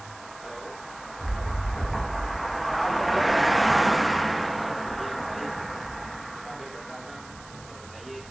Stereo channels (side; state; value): right; noise; hiss, 21 dB below the sound